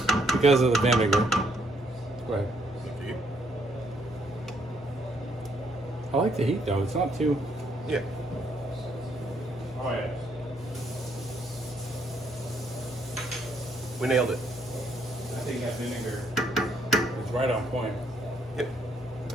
because of the vinegar. Go ahead. I like the heat though. It's not too. Yeah. Oh yeah. We nailed it. I think that vinegar is right on point. Yep.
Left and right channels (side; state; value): both; normal; correlation 0.71